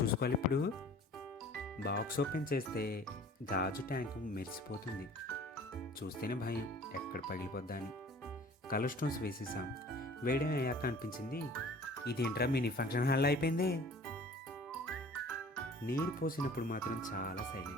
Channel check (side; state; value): both; normal; correlation 0.48